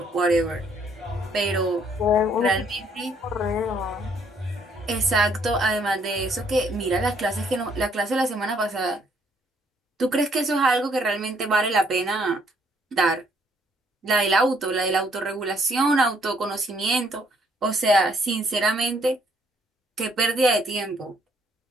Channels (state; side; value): normal; both; correlation 0.67